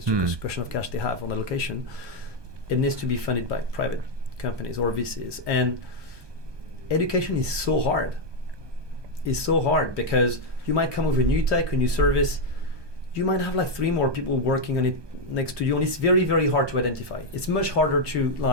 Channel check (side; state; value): left; late; 1.2 ms